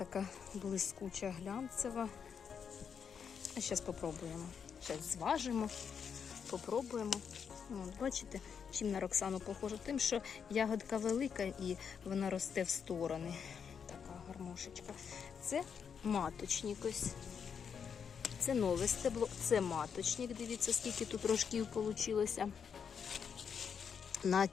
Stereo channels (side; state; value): right; quieter; 6.9 dB